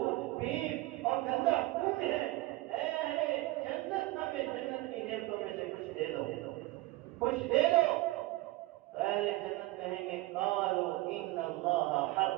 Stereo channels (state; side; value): quieter; left; 19.4 dB